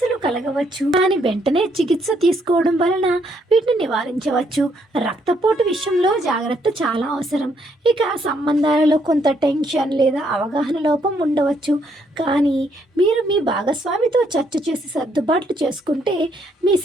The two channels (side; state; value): both; normal; correlation 0.72